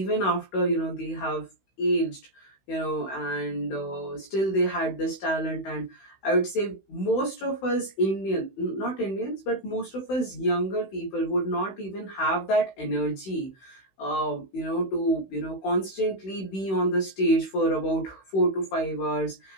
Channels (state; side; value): late; right; 16 ms